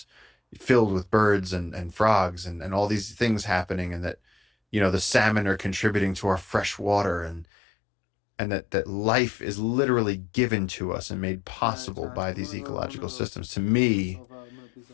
filled with birds and frogs and all these things happening, and that, you know, the salmon are contributing to our fresh water, and that life is literally given to us and made possible by these ecological systems. To me,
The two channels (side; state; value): right; drops out; at 7.5 s